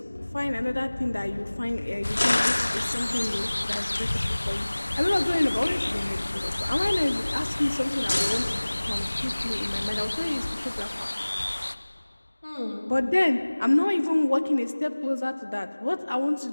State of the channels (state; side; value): inverted; both; correlation -1.00